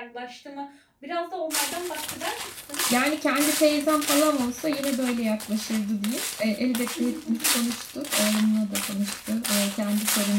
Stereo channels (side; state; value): both; identical; correlation 1.00